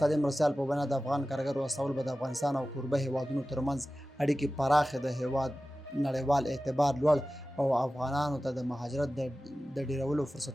مرستیال په بنا د افغان کارګرو استول به د افغانستان او کوربه هیوادونو ترمنځ اړیکې پراخې د هیواد نړیوال اعتبار لوړ او افغانانو ته د مهاجرت د ډیرولو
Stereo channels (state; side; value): normal; both; correlation 0.95